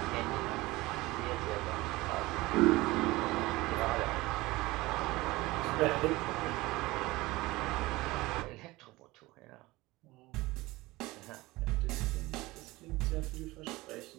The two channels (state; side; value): quieter; left; 20.2 dB